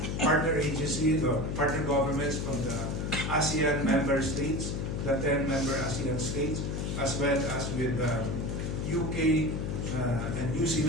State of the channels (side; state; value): left; noise; hum, 2 dB below the sound